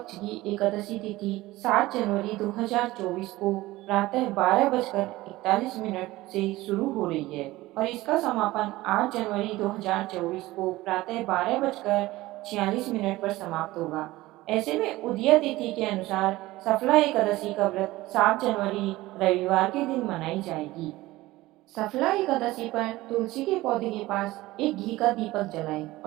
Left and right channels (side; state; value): left; quieter; 18.3 dB